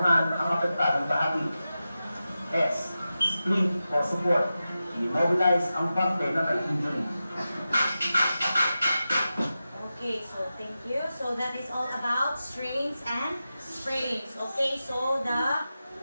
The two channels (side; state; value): both; inverted; correlation -0.93